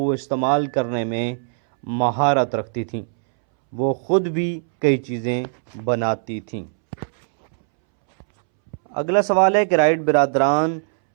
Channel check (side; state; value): left; silent; 64 dB below the other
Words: استعمال کرنے میں مہارت رکھتی تھیں، وہ خود بھی کئی چیزیں بناتی تھیں۔ اگلا سوال ہے کہ رائٹ برادران